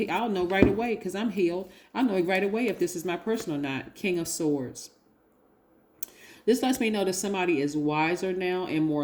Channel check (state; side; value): identical; both; correlation 1.00